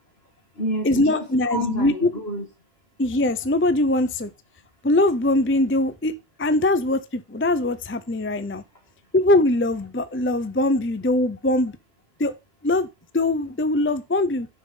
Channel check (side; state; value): both; normal; correlation 0.29